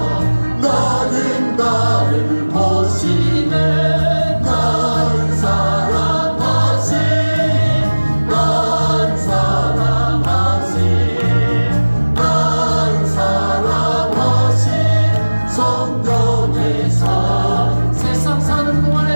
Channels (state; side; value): inverted; both; correlation -1.00